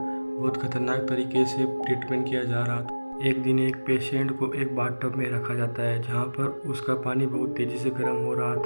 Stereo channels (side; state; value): both; inverted; correlation -1.00